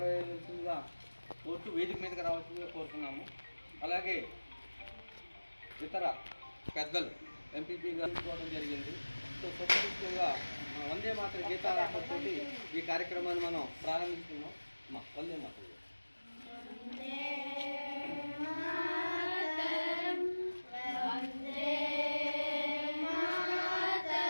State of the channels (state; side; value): inverted; both; correlation -1.00